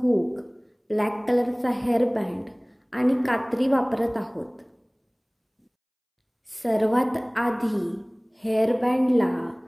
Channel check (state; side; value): identical; both; correlation 1.00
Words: ब्लॅक कलरचा हेअर बँड आणि कात्री वापरत आहोत. सर्वात आधी हेअर बँडला